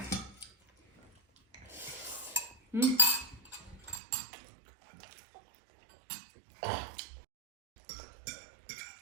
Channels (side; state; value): left; drops out; at 4.0 s